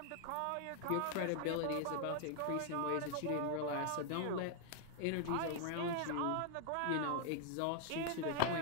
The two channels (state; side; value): different; both; correlation 0.00